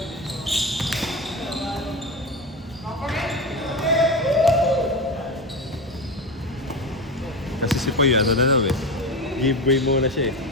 Kasi si Poy, ano na daw eh. Giveaway muna siya eh.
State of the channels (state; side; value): normal; both; correlation 0.21